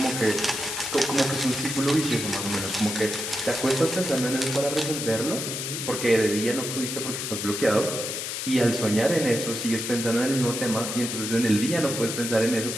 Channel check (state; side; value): noise; left; hiss, 4 dB below the sound